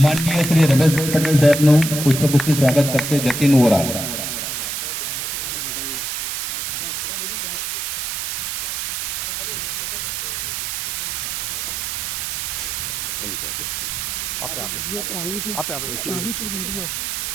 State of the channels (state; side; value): noise; right; hiss, 2 dB below the sound